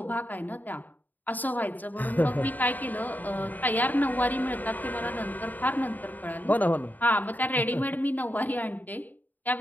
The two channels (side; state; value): right; late; 0.084 ms